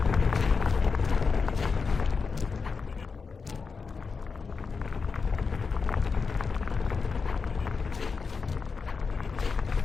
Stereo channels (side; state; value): right; quieter; 5.0 dB